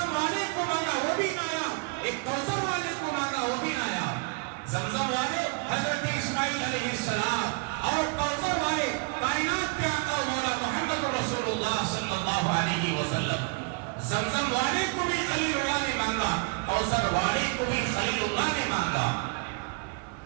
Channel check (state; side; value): quieter; left; 33.3 dB